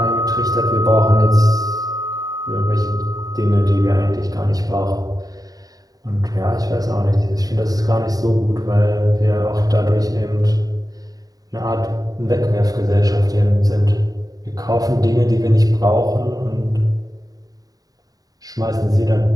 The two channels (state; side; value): late; left; 0.18 ms